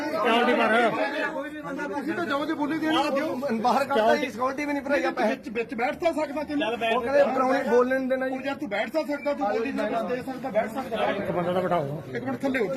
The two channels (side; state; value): both; identical; correlation 1.00